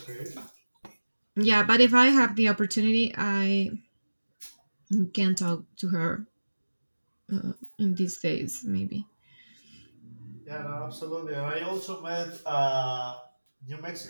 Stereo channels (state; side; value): inverted; both; correlation -1.00